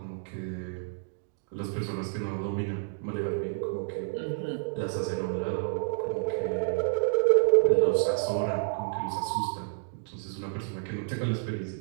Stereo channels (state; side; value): silent; left; digital silence